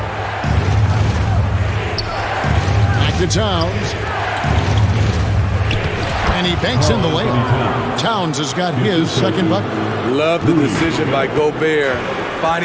Back to Towns. And he banks in the layup. Towns has got his second bucket. Love the decision by Gobert.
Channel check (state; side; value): identical; both; correlation 1.00